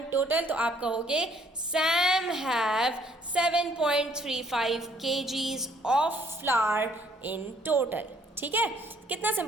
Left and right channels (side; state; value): both; normal; correlation 0.63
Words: total? तो आप कहोगे Sam have 7.35 kgs of flour in total. ठीक है, कितना